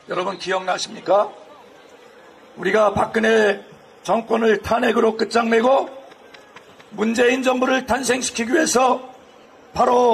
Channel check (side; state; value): both; identical; correlation 1.00